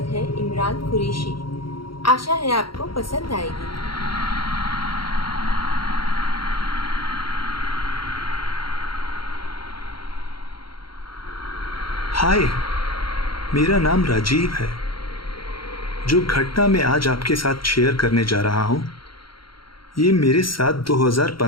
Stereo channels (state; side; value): late; right; 0.73 ms